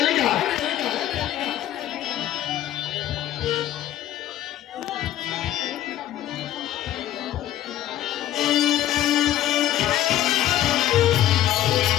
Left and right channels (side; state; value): right; quieter; 12.6 dB